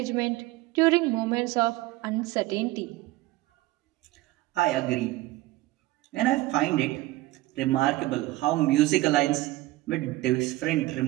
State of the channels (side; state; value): left; quieter; 18.2 dB